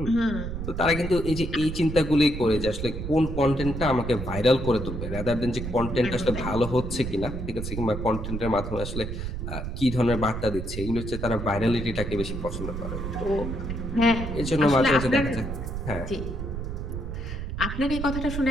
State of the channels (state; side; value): noise; right; rumble, 5 dB below the sound